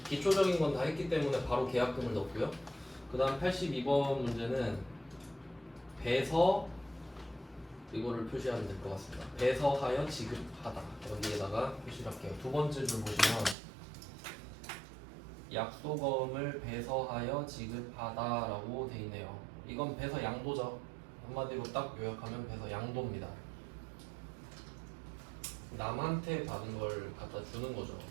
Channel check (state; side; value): drops out; left; at 13.6 s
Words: 기초적인 건 다 했기 때문에 바로 계약금을 넣고요. 그 다음 82번 문제는 배서, 이거를 표시하면 될 것 같습니다. 배서하여 지급하다. 여기에다가 표시를 할게요. 두 번째 줄 보시면 약소금을 배서하여 지급하다 라고 돼 있네요. 이건 배서 양도죠. 한마디로 딱 요약하면 배서 양도입니다. 남한테 받은 걸 갖다 주는 거죠.